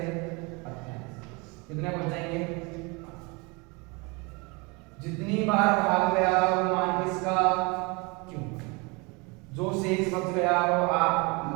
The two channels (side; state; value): left; quieter; 28.4 dB